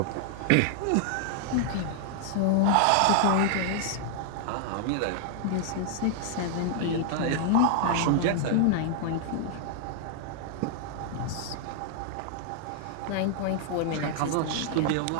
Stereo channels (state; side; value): different; both; correlation -0.01